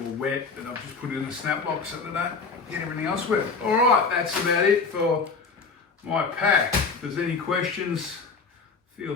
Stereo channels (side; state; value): right; quieter; 4.7 dB